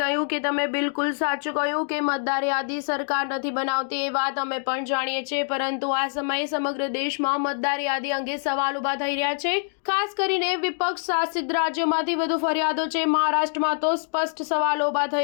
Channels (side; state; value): right; silent; digital silence